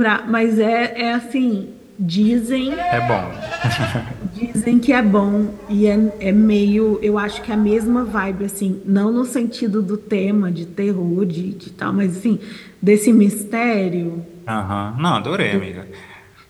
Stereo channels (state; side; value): identical; both; correlation 1.00